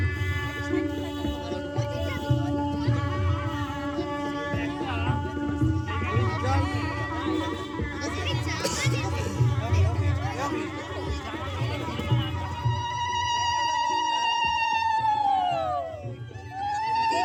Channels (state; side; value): identical; both; correlation 1.00